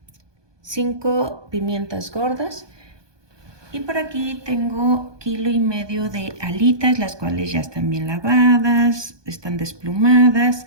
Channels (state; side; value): late; left; 1.2 ms